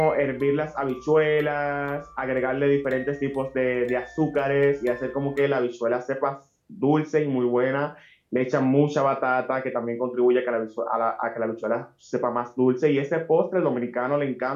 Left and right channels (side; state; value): both; identical; correlation 1.00